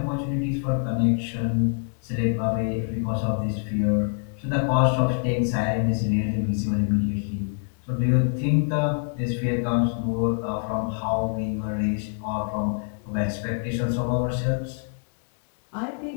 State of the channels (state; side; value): silent; right; digital silence